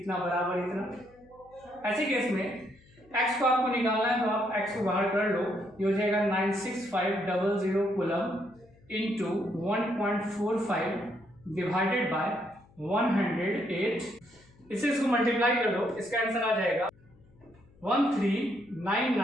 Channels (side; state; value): left; noise; hum, 28 dB below the sound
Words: बराबर इतना। ऐसे केस में x को आपको निकालना है, तो आप x को बाहर कर लो, ये हो जाएगा 96500 कूलम इंटू 1.45 डिवाइडेड बाय 108, इसको मल्टीप्लाई कर दो, इसका आंसर आ जाएगा